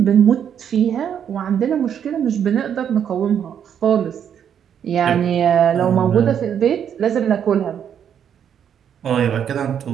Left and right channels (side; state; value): left; quieter; 8.6 dB